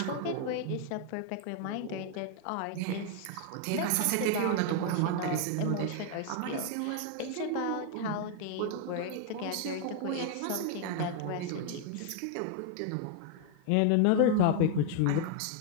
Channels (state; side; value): different; both; correlation 0.00